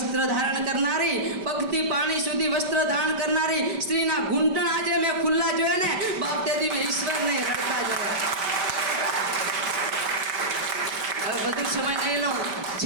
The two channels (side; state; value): left; late; 5.1 ms